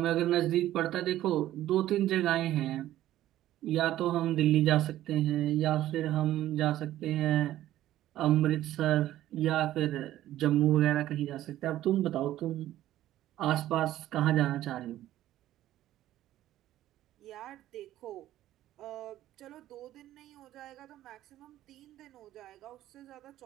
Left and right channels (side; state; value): left; quieter; 13.7 dB